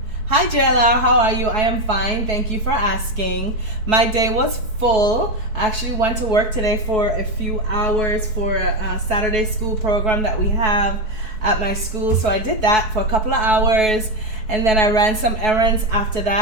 Hi, JLR. How are you? I am fine. Thank you for asking. My day was full. I actually went to work today for a few hours for a Saturday school program that we have at my school. So I did that for a couple of hours, and then I ran some errands after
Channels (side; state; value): left; late; 4.6 ms